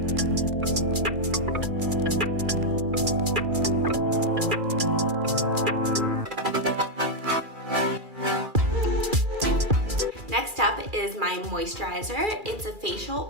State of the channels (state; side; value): late; left; 2.4 ms